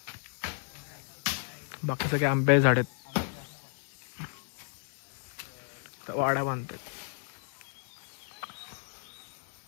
बाकी सगळे आंबे झाड आहेत. तर वाडा बांधतात.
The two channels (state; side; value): silent; right; digital silence